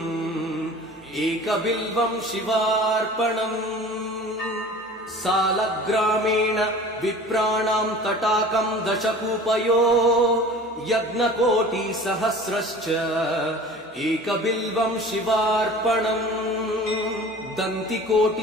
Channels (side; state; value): both; normal; correlation 0.41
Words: एकबिल्वं शिवार्पणम् सालग्रामेण विप्राणां तटाकं दशकूपयो यज्ञकोटिसहस्रश्च एकबिल्वं शिवार्पणम्